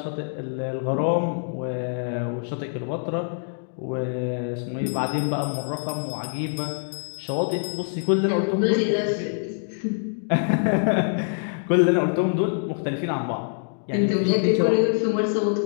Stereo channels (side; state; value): right; silent; digital silence